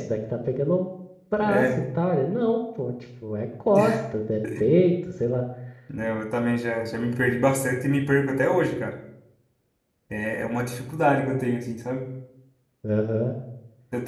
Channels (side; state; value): both; identical; correlation 1.00